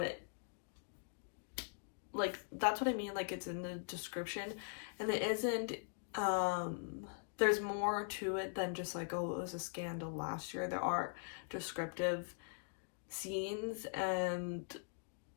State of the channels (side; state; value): right; silent; digital silence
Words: it, like, that's what I mean, like, it's in the description, and it isn't, there's more to it than just like, oh, it was a scandal last year. There are descriptive scenes and